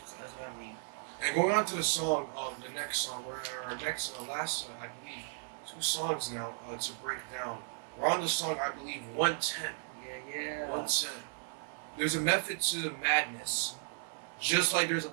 So that's what I mean. And going on to the song, the next song, last, I believe, 2 songs now to break down. We're on the song, I believe, 110. Yeah. 110. There's a method to the madness, just like there's a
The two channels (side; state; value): left; silent; digital silence